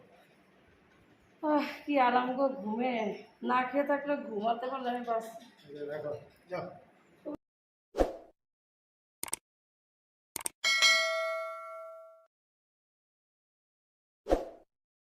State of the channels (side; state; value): both; identical; correlation 1.00